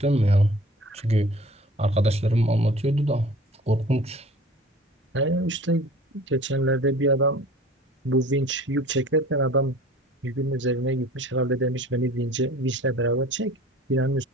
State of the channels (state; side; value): normal; both; correlation 0.45